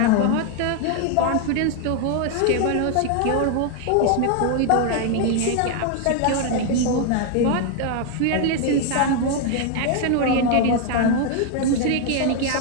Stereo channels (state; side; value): different; both; correlation 0.00